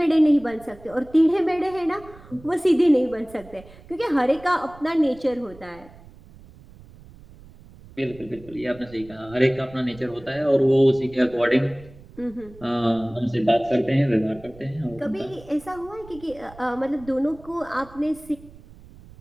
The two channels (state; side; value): noise; right; rumble, 21 dB below the sound